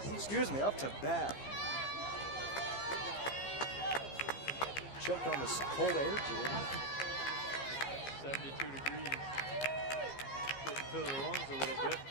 bat. Choked on this cold air, Jordan. 72 degrees. Getting to the lungs a little bit.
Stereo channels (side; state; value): right; late; 15 ms